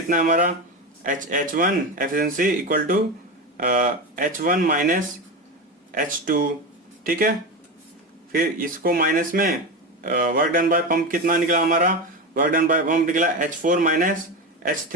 है हमारा, H1 efficiency equal to H1 minus H2, ठीक है। फिर इसको माइनस में वर्क डन बाय पंप कितना निकला हमारा, वर्क डन बाय पंप निकला H4 minus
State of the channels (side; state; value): both; normal; correlation 0.19